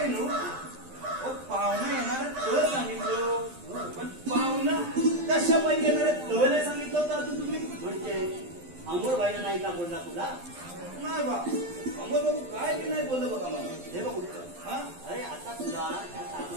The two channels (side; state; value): left; late; 12 ms